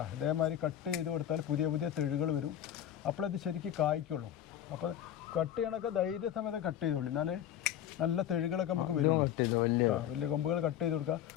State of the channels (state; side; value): quieter; right; 10.9 dB